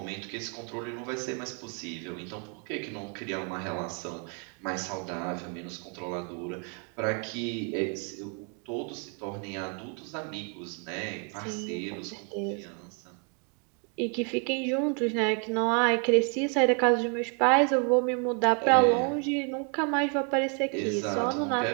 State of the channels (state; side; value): quieter; left; 38.8 dB